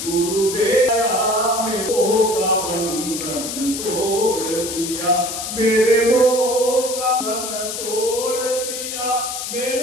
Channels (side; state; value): left; noise; hiss, 5 dB below the sound